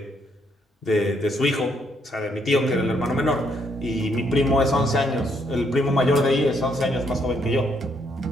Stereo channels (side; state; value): both; normal; correlation 0.72